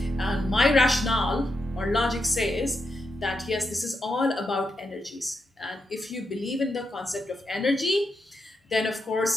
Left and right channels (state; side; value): normal; both; correlation 0.85